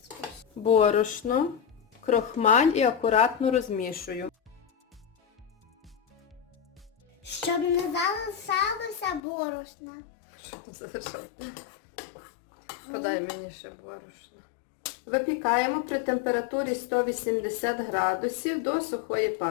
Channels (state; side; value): drops out; right; at 9.2 s